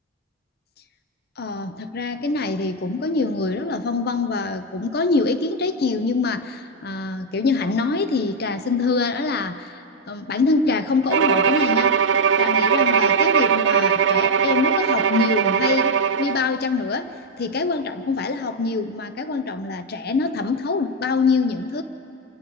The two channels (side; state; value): both; normal; correlation 0.03